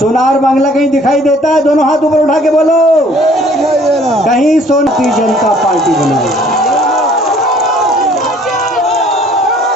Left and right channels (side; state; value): both; normal; correlation 0.57